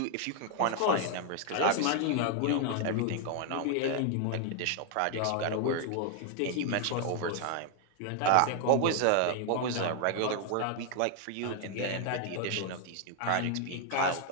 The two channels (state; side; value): different; both; correlation 0.00